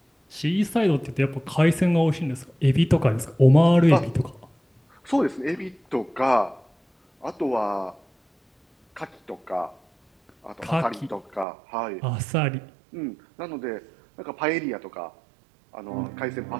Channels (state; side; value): drops out; left; at 11.5 s